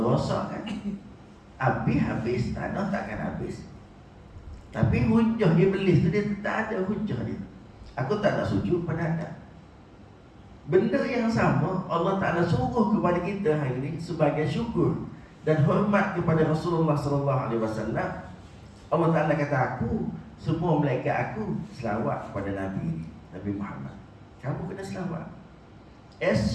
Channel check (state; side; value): identical; both; correlation 1.00